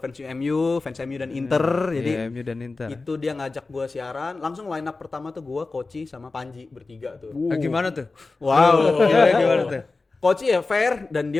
fans MU dan Inter. Jadi Iya, MU dan Inter. itu dia ngajak gue siaran, langsung line up pertama tuh gue, Koci sama Panji bertiga tuh. Gimana tuh? Wow. Gimana tuh? Koci ya fair, dan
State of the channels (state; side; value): quieter; right; 3.7 dB